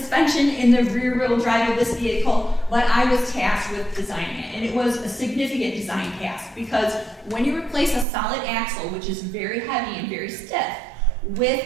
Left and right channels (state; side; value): drops out; left; at 8.1 s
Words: in the rear wheel drive of this vehicle, but I was tasked with designing it. And it was a significant design task because when you replace a solid axle, which is very heavy and very stiff,